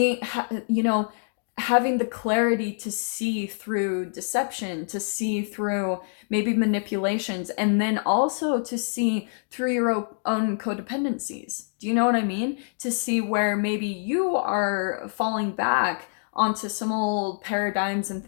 you know, having the clarity to see through deception, to see through maybe manipulations, and then also to see through your own codependencies. Do you know what I mean? To see where maybe you are falling back onto some old paradigms and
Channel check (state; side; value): silent; right; 58 dB below the other